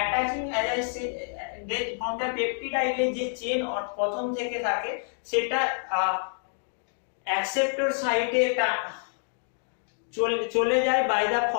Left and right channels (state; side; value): silent; right; digital silence